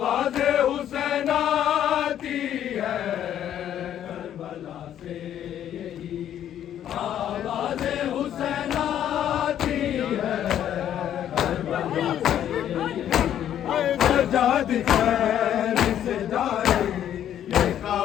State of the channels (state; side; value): quieter; right; 10.6 dB